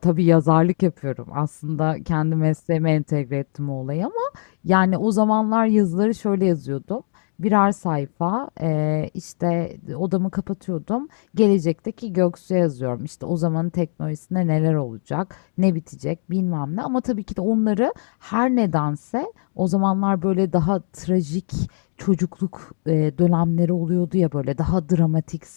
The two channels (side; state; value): right; silent; digital silence